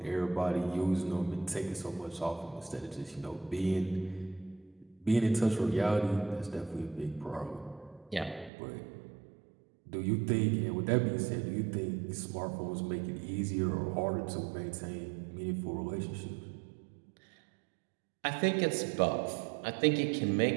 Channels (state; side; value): drops out; left; at 8.5 s